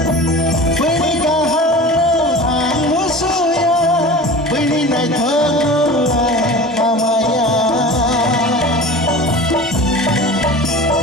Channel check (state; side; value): normal; both; correlation 0.36